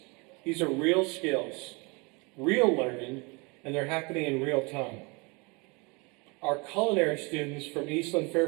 These are real skills, real learning, and they're happening in real time. Our culinary students from Eastland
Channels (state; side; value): quieter; left; 28.9 dB